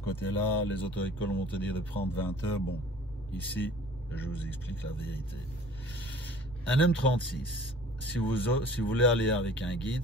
côté-là. Les auto-écoles vont te dire de prendre 20 heures. Bon, ici, je vous explique la vérité. Un M36, si vous voulez aller avec un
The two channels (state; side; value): normal; both; correlation 0.48